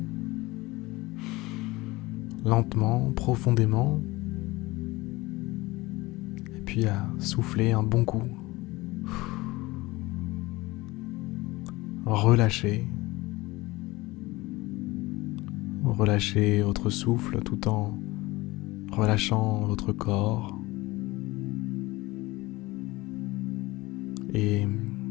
lentement, profondément, et puis à souffler un bon coup. Relâchez votre souffle tout en relâchant votre corps. Et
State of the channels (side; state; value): right; quieter; 20.8 dB